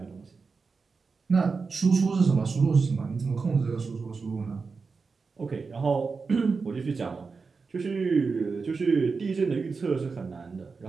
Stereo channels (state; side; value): quieter; left; 4.7 dB